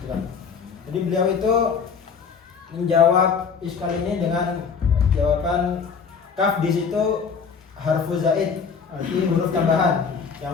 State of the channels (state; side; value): quieter; right; 6.0 dB